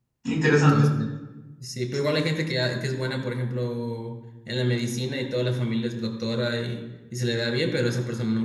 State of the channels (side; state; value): both; identical; correlation 1.00